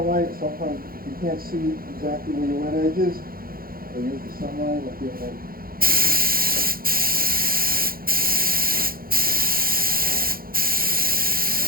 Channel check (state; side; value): late; left; 0.42 ms